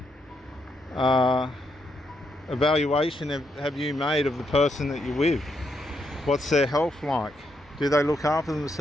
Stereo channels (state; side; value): normal; both; correlation 0.79